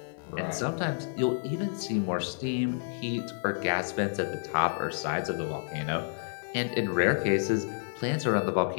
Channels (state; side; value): silent; right; digital silence